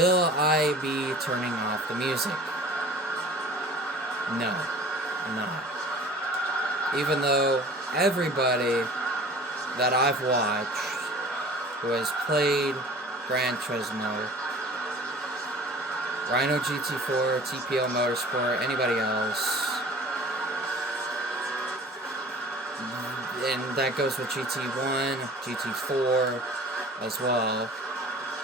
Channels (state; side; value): normal; both; correlation 0.45